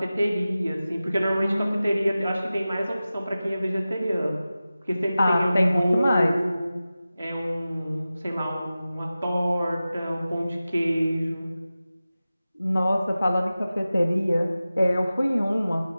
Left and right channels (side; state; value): both; inverted; correlation -0.95